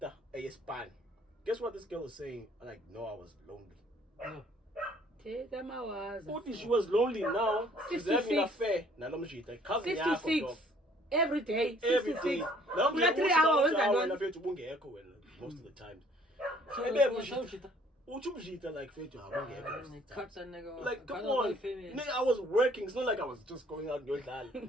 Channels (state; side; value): normal; both; correlation 0.59